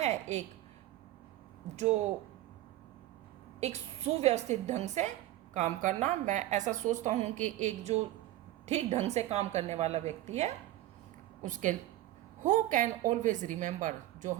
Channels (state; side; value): quieter; left; 15.1 dB